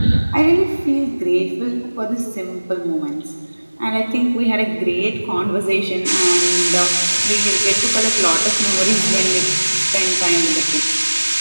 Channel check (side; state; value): both; inverted; correlation -1.00